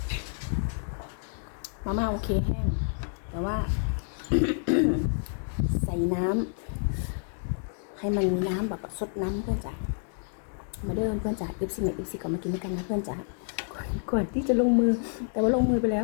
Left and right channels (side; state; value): right; silent; digital silence